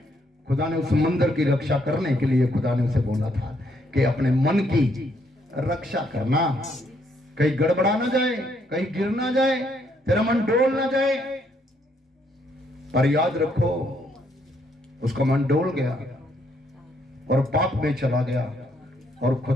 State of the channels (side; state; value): both; normal; correlation 0.72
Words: खुदा ने उस मंदिर की रक्षा करने के लिए खुदा ने उसे बोला था कि अपने मन की रक्षा करना, कहीं गड़बड़ा ना जाए, कहीं गिर ना जाए, तेरा मन डोल ना जाए। पर याद रखो, उसका मन डोल गया और पाप में चला गया और